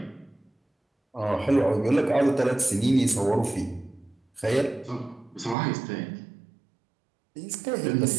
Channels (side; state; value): left; drops out; at 5.6 s